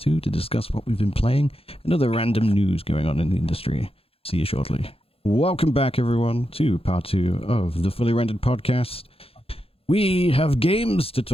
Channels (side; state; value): right; late; 0.27 ms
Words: to discuss what we've been playing and other random news going on in the industry. See you shortly. Welcome back, everyone, to part 2 of the Fully Rendered podcast. We have games to